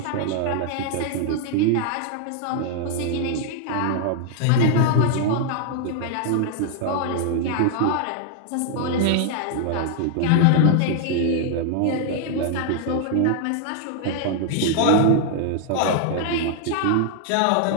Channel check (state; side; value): different; both; correlation 0.00